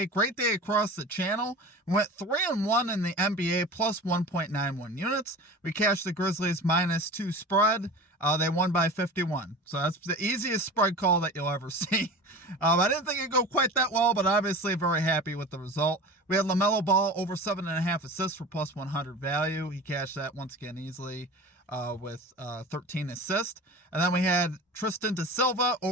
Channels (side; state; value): both; normal; correlation 0.34